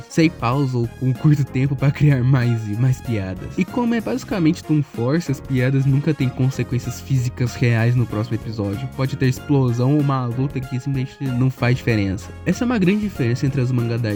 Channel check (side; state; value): both; identical; correlation 1.00